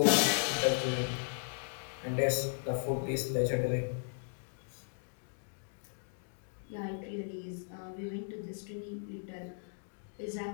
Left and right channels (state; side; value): silent; right; digital silence